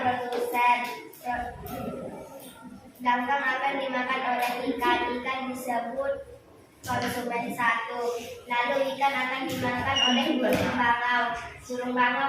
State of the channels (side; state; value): both; identical; correlation 1.00